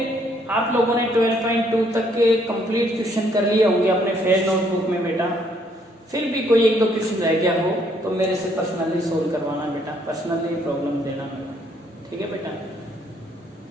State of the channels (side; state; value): both; normal; correlation 0.68